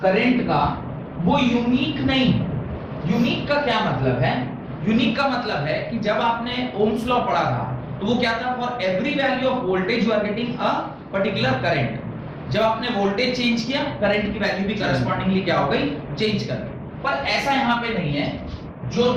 करंट का वो यूनिक नहीं। यूनिक का क्या मतलब है? यूनिक का मतलब है कि जब आपने ओम्स लॉ पढ़ा था तो वो क्या था, for every value of voltage you are getting a particular current. जब आपने वोल्टेज चेंज किया करंट की वैल्यू भी करस्पॉन्डिंगली क्या हो गई, चेंज कर गई। पर ऐसा यहाँ पे नहीं है। जो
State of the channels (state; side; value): identical; both; correlation 1.00